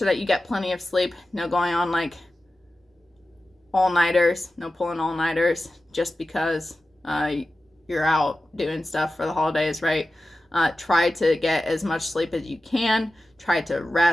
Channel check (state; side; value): normal; both; correlation 0.94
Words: that you get plenty of sleep. No going on like all-nighters. No pulling all-nighters just because you're out doing stuff for the holidays, right? Try to get as much sleep as you can. Try to